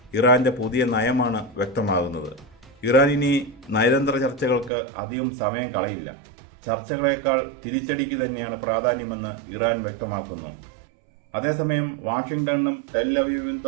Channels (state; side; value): drops out; left; at 4.7 s